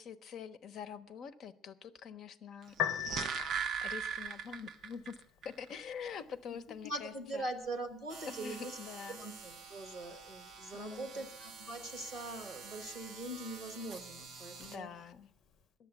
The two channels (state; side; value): normal; both; correlation 0.49